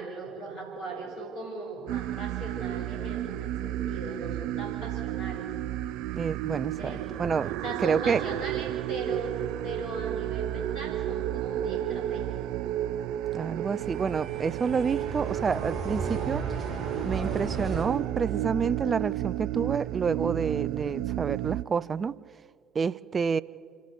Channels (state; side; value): quieter; left; 7.2 dB